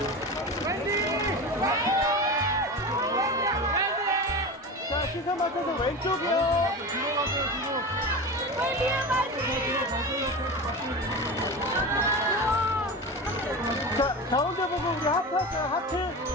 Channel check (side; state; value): both; normal; correlation 0.27